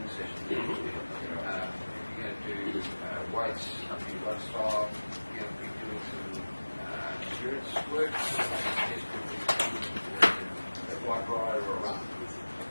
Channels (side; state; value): both; inverted; correlation -1.00